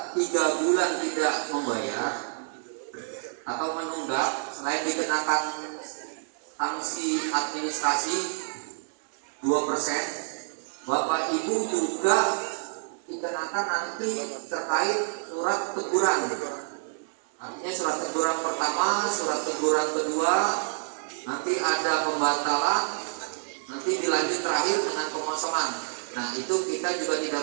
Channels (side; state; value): left; silent; 59 dB below the other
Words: bulan tidak membayar atau menunggak, selain dikenakan sanksi administrasi 2%, Bapak Ibu juga dikenakan nanti terkait surat teguran. Artinya surat teguran pertama, surat teguran kedua, nanti ada pembatalan, nanti dilanjut terakhir dengan pengosongan. Nah, itu kita juga tidak